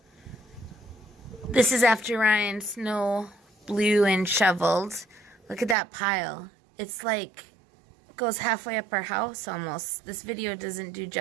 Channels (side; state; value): left; drops out; at 5.8 s